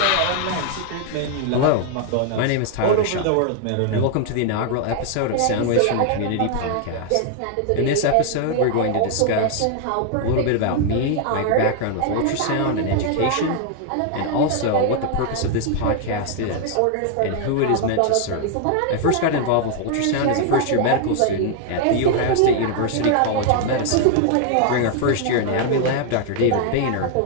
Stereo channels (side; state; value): both; different; correlation 0.00